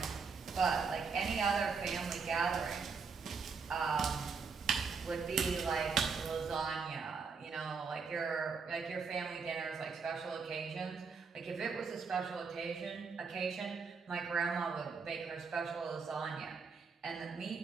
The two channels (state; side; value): quieter; left; 5.3 dB